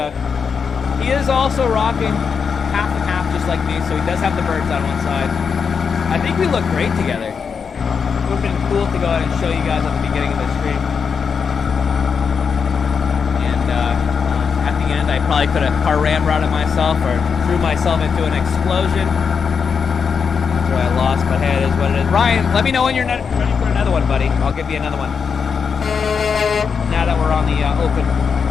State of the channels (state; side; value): quieter; right; 6.1 dB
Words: He is also rocking half and half just like me, so he does have the birds on one side. I think we look great together. It would have been cool to go ahead and show you guys at the beginning of the stream. And at the end, I probably could have car ramrodded myself or threw myself into an explosion. After I lost, but hey, it is what it is. Ryan, let me know when you're ready for another one, buddy. I'll give you another one. Now that we're on the